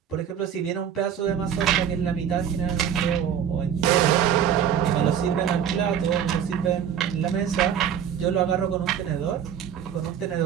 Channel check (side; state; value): left; quieter; 8.7 dB